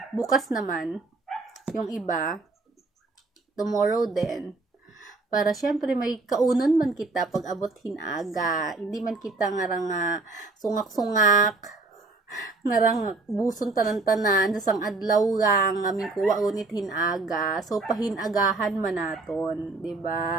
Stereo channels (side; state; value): left; quieter; 3.4 dB